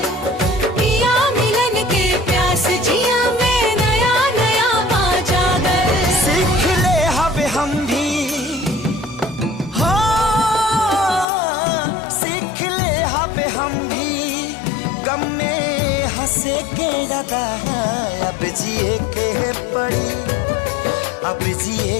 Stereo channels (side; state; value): right; drops out; at 11.2 s